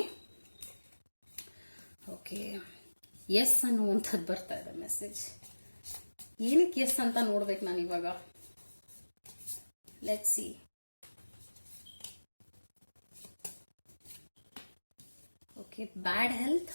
ಓಕೆ, ಎಸ್ ಅನ್ನುವಂಥದ್ದು ಬರ್ತಾ ಇದೆ ಮೆಸೇಜ್. ಏನಕ್ಕೆ ಎಸ್ ಅಂತ ನೋಡ್ಬೇಕು ನಾನು ಇವಾಗ. Let's see. Okay, bad health,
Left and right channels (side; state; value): both; inverted; correlation -1.00